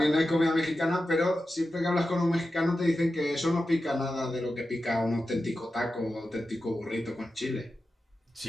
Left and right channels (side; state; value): both; normal; correlation 0.92